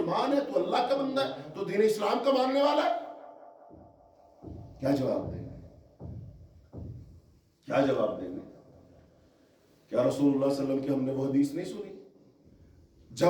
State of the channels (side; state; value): both; identical; correlation 1.00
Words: ہے، تو اللہ کا بندہ ہے، تو دین اسلام کا ماننے والا ہے. کیا جواب دیں گے؟ کیا جواب دیں گے؟ کیا رسول اللہ صلی اللہ علیہ وسلم کی ہم نے وہ حدیث نہیں سنی؟